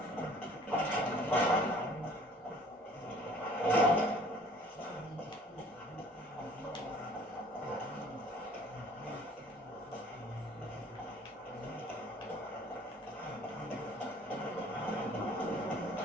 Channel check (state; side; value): normal; both; correlation 0.53